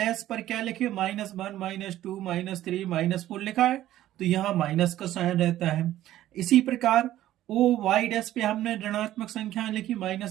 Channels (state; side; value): quieter; left; 13.6 dB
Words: पर क्या लिखे, -1 -2 -3 -4 लिखा है, तो यहाँ माइनस का साइन रहता है। इसी प्रकार ओ वाई डैश पे हमने ऋणात्मक संख्या लिखी,